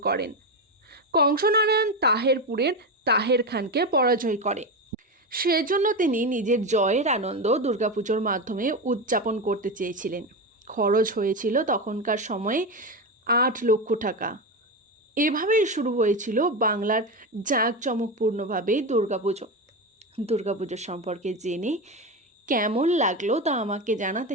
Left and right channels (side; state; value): both; normal; correlation 0.17